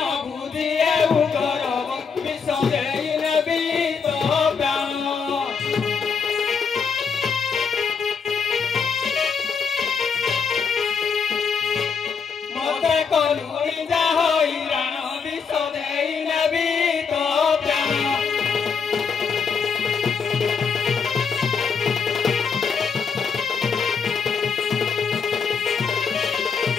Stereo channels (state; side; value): quieter; right; 5.9 dB